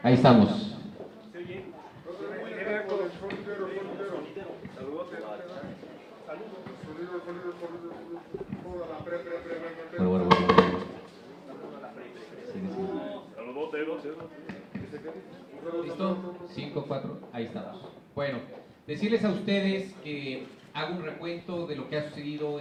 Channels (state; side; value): identical; both; correlation 1.00